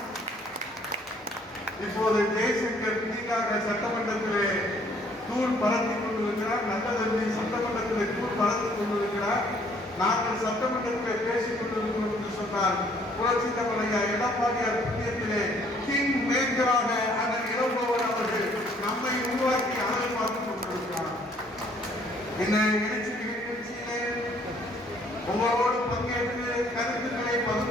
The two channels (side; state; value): both; normal; correlation 0.62